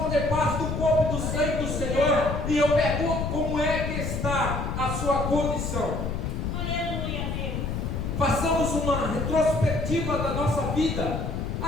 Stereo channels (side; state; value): left; noise; rumble, 2 dB below the sound